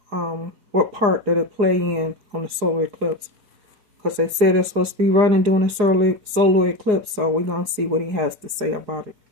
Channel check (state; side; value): late; left; 4.8 ms